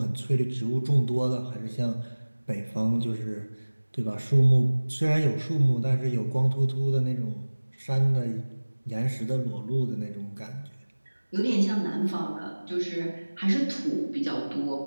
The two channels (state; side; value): inverted; both; correlation -1.00